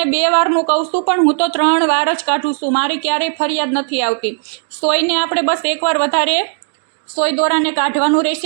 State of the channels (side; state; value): left; silent; 67 dB below the other